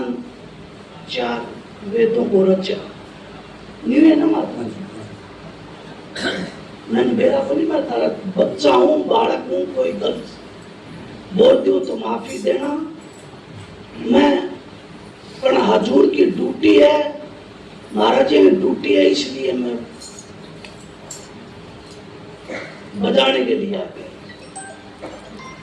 4 वेदों को रचा। नहीं है ना महात्मा जी? मैंने मेरा को नहीं, मैं तारा बच्चा हूँ, बालक हूँ, कोई गलत बोल दूं तो माफी देना। मैं पर हजूर की ड्यूटी है, महाराज जी की ड्यूटी है, इसलिए मैं बजाने के लिए आ गया।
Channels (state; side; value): identical; both; correlation 1.00